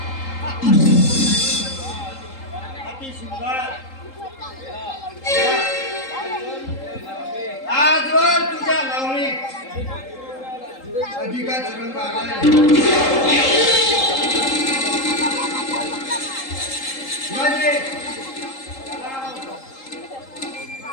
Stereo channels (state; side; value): late; right; 3.8 ms